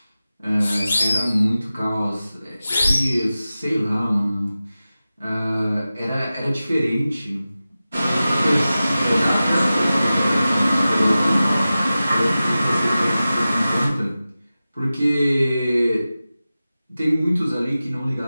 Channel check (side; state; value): both; inverted; correlation -0.95